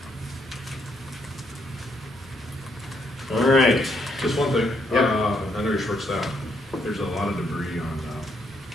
All right. Just one thing, Yeah. I know you're short staffed, there's a lot of debris on,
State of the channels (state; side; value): normal; both; correlation 0.74